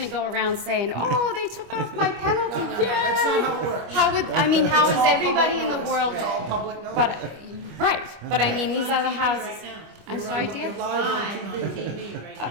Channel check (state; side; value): late; left; 25 ms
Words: go around saying, oh, they took off my penalty, No, that's not yay! how it works. How would, I mean, how It's is all everybody public in the notice. world, It's all public notice. but, right, but I mean, these other houses, Right now. I'm You're sorry, on- dear? You're live Live on on TV. TV right